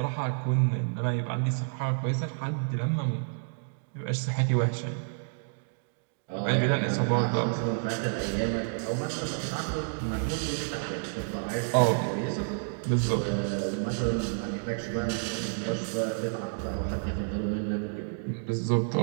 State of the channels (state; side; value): silent; left; digital silence